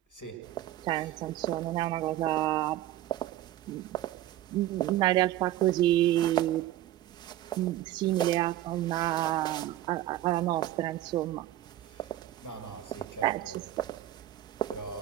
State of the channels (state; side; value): quieter; left; 14.1 dB